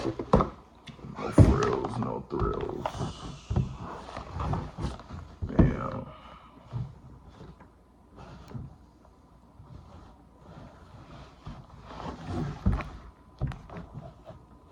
No frills, no thrills. Damn.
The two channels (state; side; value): identical; both; correlation 1.00